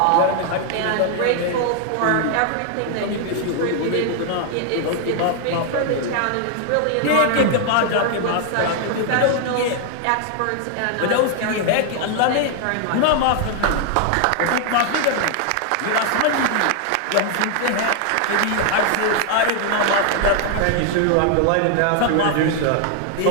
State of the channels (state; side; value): different; both; correlation 0.00